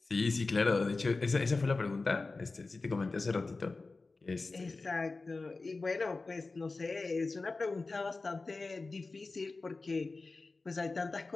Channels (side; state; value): right; quieter; 3.7 dB